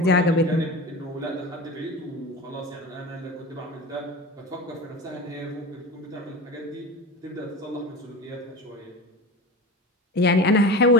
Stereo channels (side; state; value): both; normal; correlation 0.31